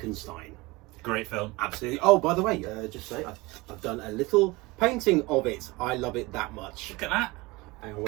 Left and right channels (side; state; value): left; quieter; 22.9 dB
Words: Great film. Absolutely. Oh, by the way, just say I've done a little painting of it. I love it that much. Look at that. Hang on,